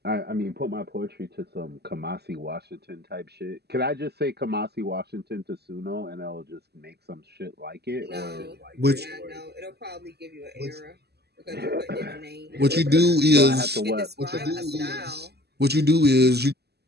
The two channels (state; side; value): late; left; 0.47 ms